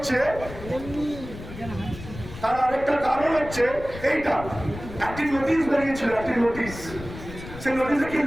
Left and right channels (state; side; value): noise; left; rumble, 12 dB below the sound